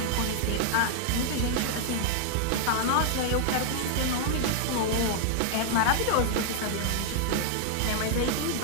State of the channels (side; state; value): both; different; correlation 0.00